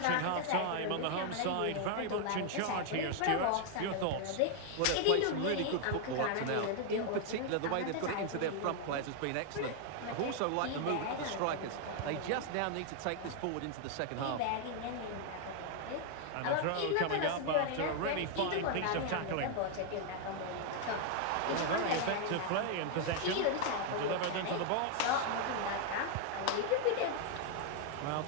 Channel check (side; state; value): both; different; correlation 0.00